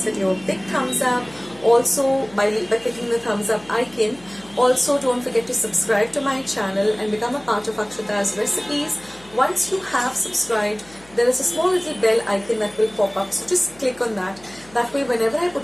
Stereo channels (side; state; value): left; noise; hum, 25 dB below the sound